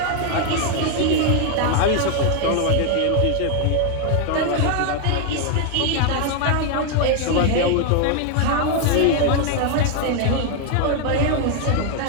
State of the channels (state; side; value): different; both; correlation 0.00